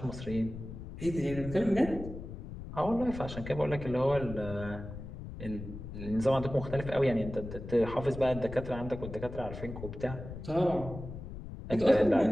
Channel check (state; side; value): noise; left; rumble, 10 dB below the sound